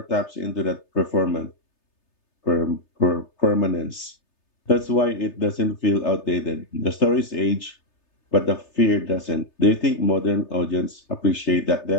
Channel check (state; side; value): late; right; 3.3 ms